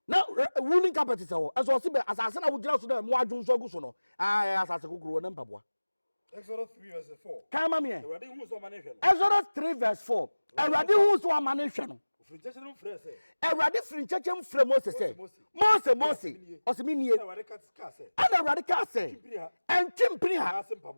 na woolen carpet se ho eso se be asase na wodira so na mu adwu so agu so no asase gogoro na mpabwa. Exodus 3 verse 4 kama me Exodus 3 verse 4 Awurade hu so amane hwe no Awurade firi nkyekye mfrɛ Moses sɛ Mose ɔsɛminie ana Awurade ka sɛ ɛntwempiri ha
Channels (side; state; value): both; inverted; correlation -1.00